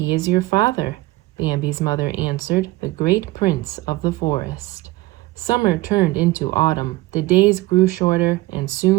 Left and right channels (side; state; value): left; quieter; 19.4 dB